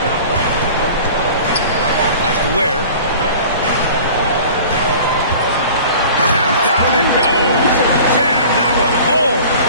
Pass to Ware. Down it goes. Jam that one home.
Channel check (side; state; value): both; inverted; correlation -0.43